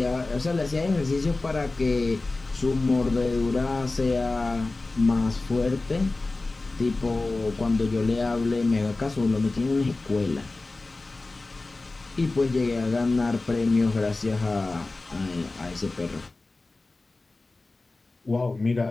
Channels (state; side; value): quieter; right; 3.3 dB